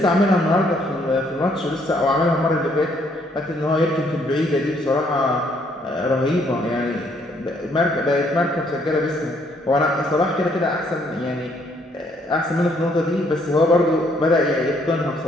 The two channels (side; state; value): both; normal; correlation 0.68